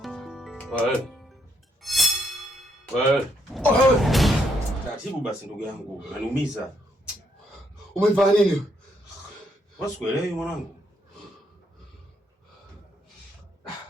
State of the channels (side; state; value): both; normal; correlation 0.75